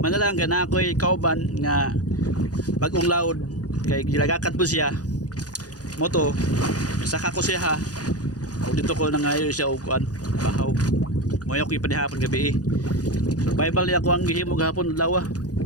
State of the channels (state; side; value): late; right; 0.68 ms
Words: gana ako'y kauban nga bagong laod kay gilagakat po siya. Moto, saka ko siya ha. O dito ko nangayo siya o kuan, bahaw. Moyo ko ipanihapon gabi eh. Survival niya ako ang gihimo kahapon lawa.